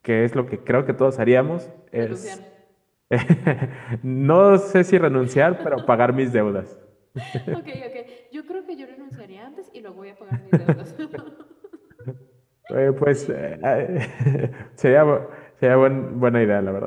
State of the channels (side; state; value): both; identical; correlation 1.00